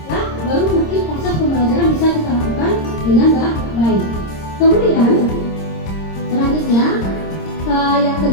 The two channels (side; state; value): right; late; 26 ms